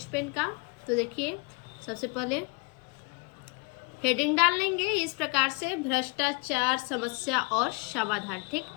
पेन का। तो देखिए सबसे पहले हेडिंग डाल लेंगे इस प्रकार से, भ्रष्टाचार समस्या और समाधान। ठीक,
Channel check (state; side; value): quieter; right; 29.8 dB